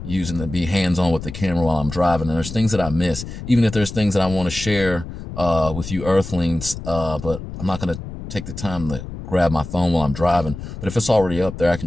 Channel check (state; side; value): noise; left; rumble, 10 dB below the sound